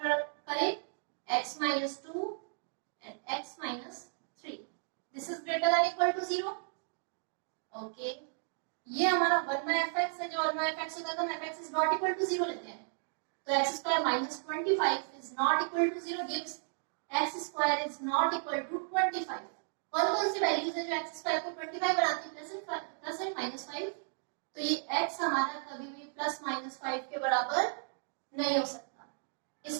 करें, x minus 2 and x minus 3. This is greater than equal to 0. Okay. ये हमारा 1 by fx है, जो 1 by fx होता है तो हम fx is not equal to 0 लेते हैं। तो x square minus 25 is not equal to 0 gives x square is not equal to 25। कौन सी वैल्यूज है जो x स्क्वायर को 25 बनाती है? Plus and minus 5। तो ये x हमारा कभी भी प्लस माइनस 5 के बराबर नहीं हो सकता।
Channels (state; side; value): silent; left; digital silence